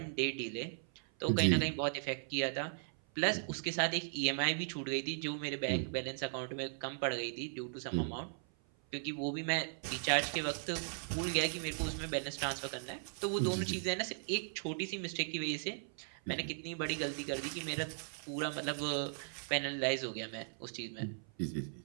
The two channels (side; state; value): left; silent; 53 dB below the other